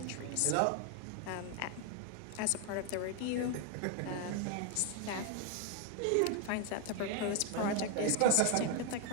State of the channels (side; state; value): both; different; correlation 0.01